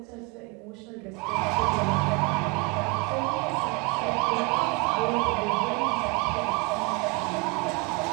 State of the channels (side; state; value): left; quieter; 27.2 dB